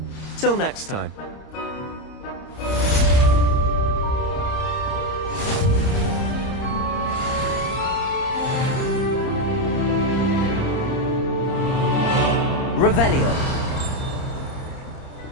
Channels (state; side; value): late; right; 30 ms